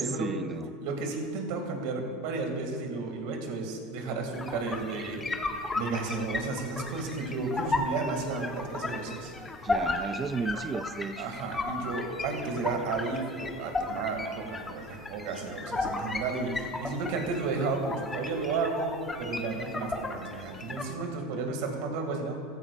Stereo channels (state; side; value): normal; both; correlation 0.38